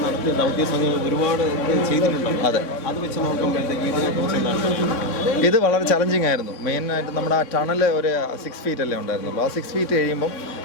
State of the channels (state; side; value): late; right; 3.6 ms